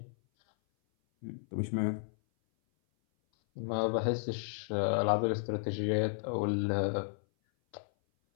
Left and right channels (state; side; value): silent; right; 56 dB below the other